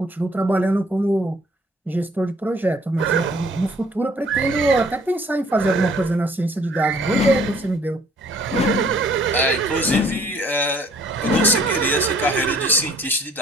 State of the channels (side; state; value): both; normal; correlation 0.58